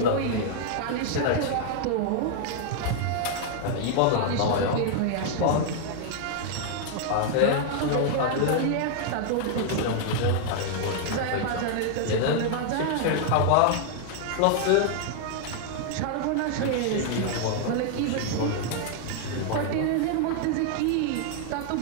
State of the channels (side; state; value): both; different; correlation 0.00